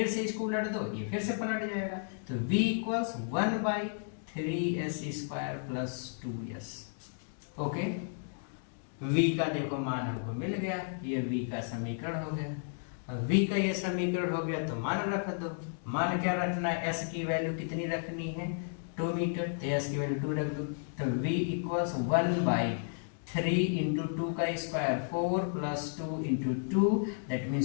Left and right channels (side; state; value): right; silent; digital silence